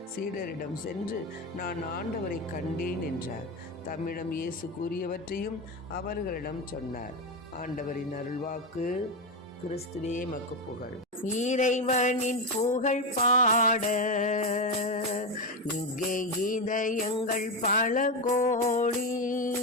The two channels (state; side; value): normal; both; correlation 0.13